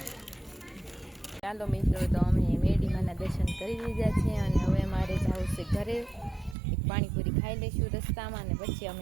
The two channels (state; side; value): drops out; left; at 6.6 s